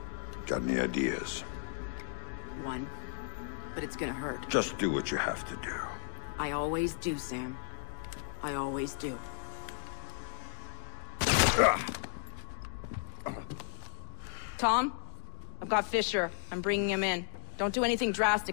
Got any ideas? One. But it's gonna hurt. Just do what you have to do. I always do, Sam. I always do. Tom? I've got Fisher. I'm bringing him in. Don't do anything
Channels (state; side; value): silent; right; 55 dB below the other